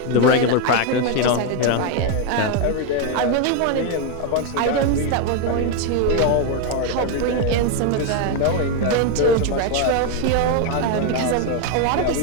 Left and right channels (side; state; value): both; different; correlation 0.01